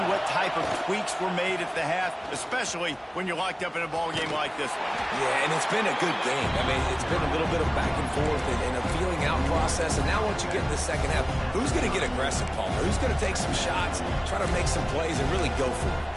what type of tweaks were made at the half, especially when you're locked up in a ball game like this one. Yeah, and it's been a good game. I mean, it's been a little bit of back and forth and a feeling out process. And now once you get in the second half, who's going to get aggressive, Paul? Who's going to take some shots, try to make some plays, and really go for it?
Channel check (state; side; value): identical; both; correlation 1.00